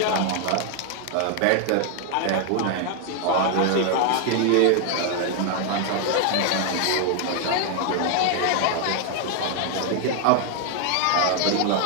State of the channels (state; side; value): different; both; correlation 0.00